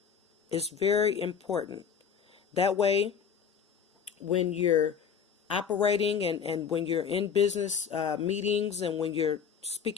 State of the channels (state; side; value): quieter; right; 7.1 dB